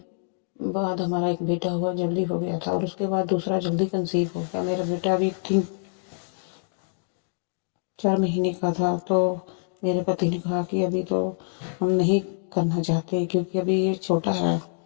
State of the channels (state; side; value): silent; right; digital silence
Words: बाद हमारा एक बेटा हुआ, जल्दी हो गया था, और उसके बाद दूसरा जल्दी कंसीव हो गया। मेरा बेटा अभी 3-4 महीने का था। तो मेरे पति ने कहा कि अभी तो हम नहीं करना चाहते क्योंकि अभी ये छोटा है,